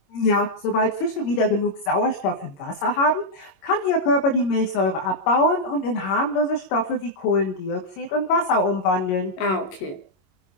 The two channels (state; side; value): late; right; 22 ms